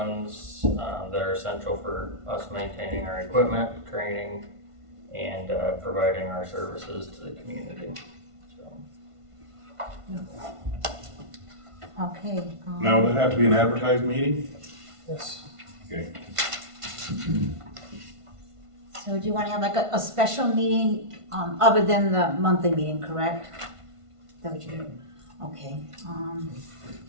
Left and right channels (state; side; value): late; left; 1.5 ms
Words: that are essential for us maintaining our equipment, training, and providing our services to the community. So Okay. Now, would that have to be an advertised meeting? Yes. Okay. So do you want to have like a special meeting, other than the monthly meeting, correct? Is that what you mean? Okay,